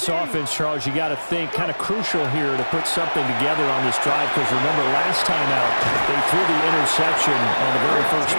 offense, Charles, you got to think kind of crucial here to put something together on this drive because remember last time out they threw the interception on the very first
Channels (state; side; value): inverted; both; correlation -1.00